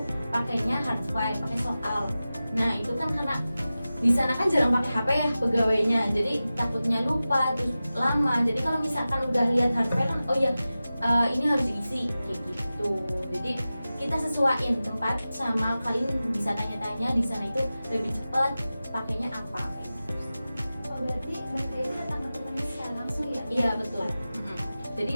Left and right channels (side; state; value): both; inverted; correlation -0.95